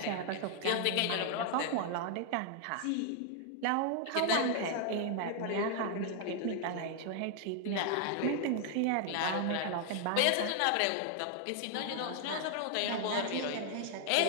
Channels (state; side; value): different; both; correlation 0.00